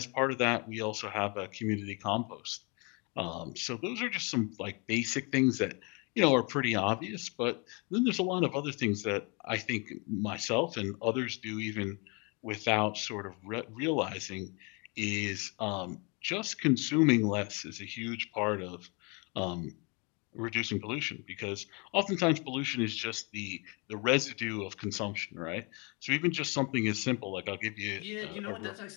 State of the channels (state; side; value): quieter; right; 31.4 dB